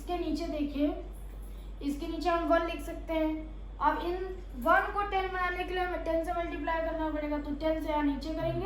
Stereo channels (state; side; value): identical; both; correlation 1.00